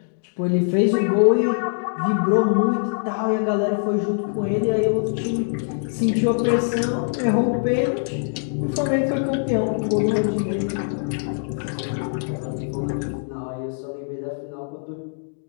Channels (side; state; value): right; silent; digital silence